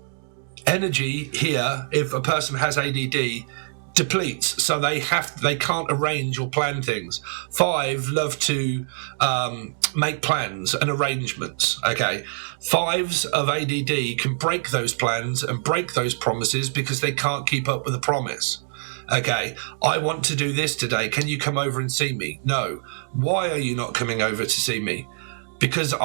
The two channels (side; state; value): left; silent; digital silence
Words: energy here, if a person has ADD, depletes, so they can't arrange or plan things. 5 love to make plans and arrangements. Okay, 5s of ADD can break those plans and break those promises because they can't keep up with the promise. Okay, I want to do this today. Can you come over and see me? No. Why are you not coming over to see me? Because